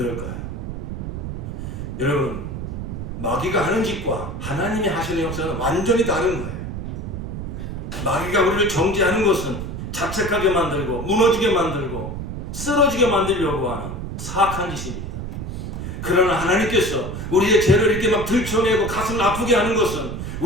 여러분, 마귀가 하는 짓과 하나님이 하시는 역사는 완전히 다른 거예요. 마귀가 우리를 정죄하는 것은 자책하게 만들고 무너지게 만들고 쓰러지게 만들려고 하는 사악한 짓입니다. 그러나 하나님께서 우리의 죄를 이렇게 막 들춰내고 가슴을 아프게 하는 것은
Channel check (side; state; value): right; noise; rumble, 6 dB below the sound